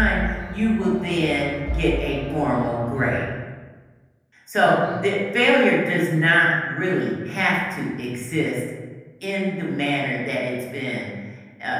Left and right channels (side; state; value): both; identical; correlation 1.00